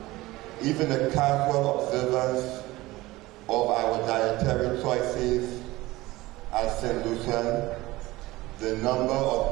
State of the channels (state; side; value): quieter; left; 19.1 dB